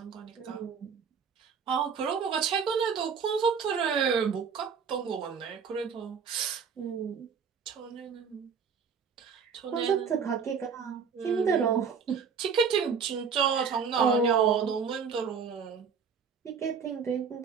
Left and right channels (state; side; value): quieter; left; 6.2 dB